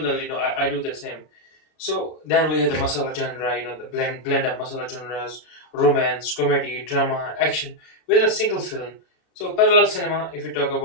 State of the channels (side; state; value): right; late; 32 ms